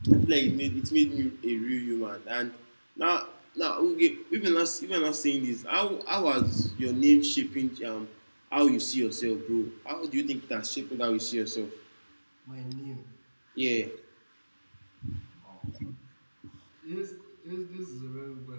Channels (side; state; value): both; inverted; correlation -1.00